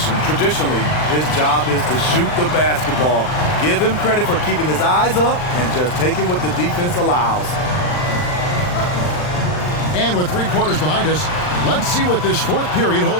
traditionally, his job is to shoot the basketball. Give him credit for keeping his eyes up and just taking what the defense allows. And with 3 quarters behind us, let's see what this 4th period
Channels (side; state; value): right; late; 39 ms